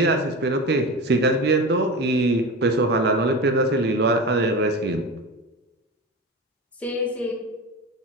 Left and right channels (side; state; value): both; normal; correlation 0.27